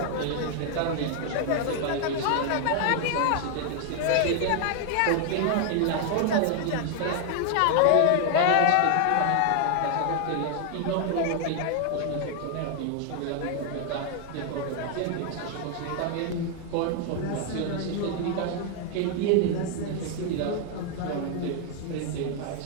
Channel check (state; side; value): different; both; correlation 0.00